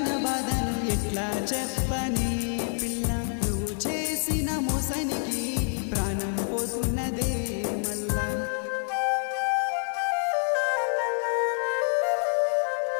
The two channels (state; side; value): silent; right; 60 dB below the other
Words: బాధను ఎట్లా చెప్పని పిల్ల నువ్వు చేసిన మోసానికి ప్రాణం పోతున్నదే మళ్ళా